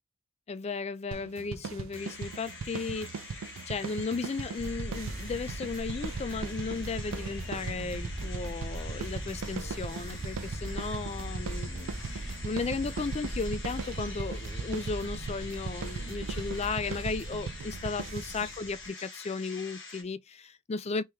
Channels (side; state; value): both; normal; correlation 0.46